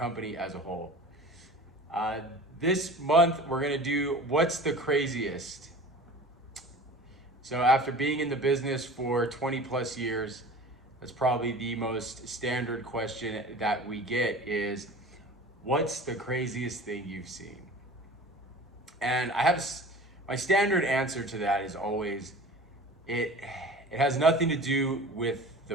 as a whole. This month, we're going to do What's the Craziest? So after being in the business for 20 plus years, that's probably the most standard question that we get is, what's the craziest thing you've seen? And I have my standard answer to that is always, it has nothing to do with the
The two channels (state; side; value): normal; both; correlation 0.40